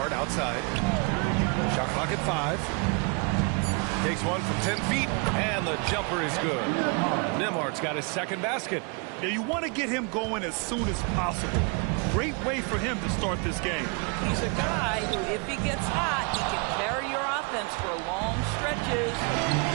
outside. Shot clock at 5. Takes one from 10 feet, and the jumper is good. Nembhard's got his second basket. Yeah, you want to get him going as soon as possible. Great way for him to start this game. He's a guy who, if he gets hot, he can carry your offense for long stretches.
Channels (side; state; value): left; quieter; 33.1 dB